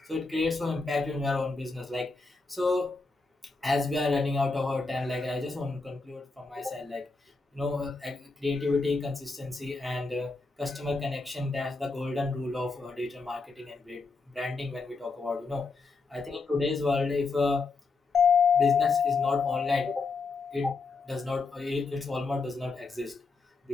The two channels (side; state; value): right; quieter; 4.0 dB